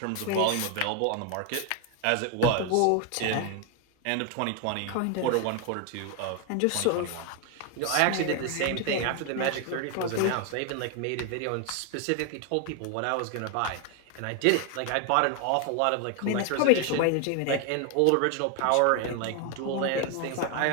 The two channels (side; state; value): both; different; correlation 0.01